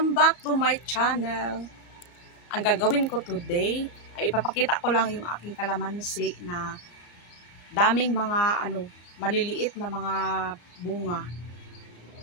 back to my channel. Ang gagawin ko today ay ipapakita ko lang yung aking kalamansi na daming mga maliliit na mga bunga.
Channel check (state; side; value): late; right; 34 ms